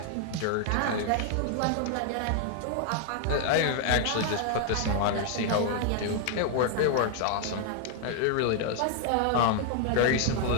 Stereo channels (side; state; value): both; different; correlation 0.00